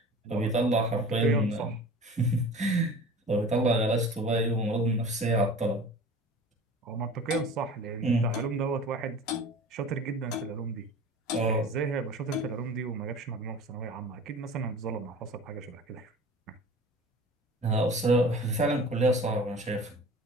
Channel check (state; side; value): normal; both; correlation 0.40